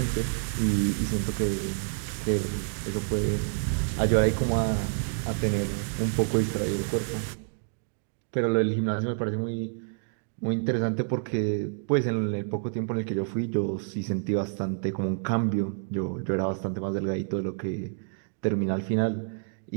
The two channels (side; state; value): left; silent; digital silence